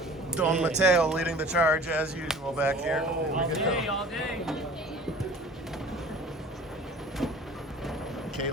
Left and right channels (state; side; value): normal; both; correlation 0.45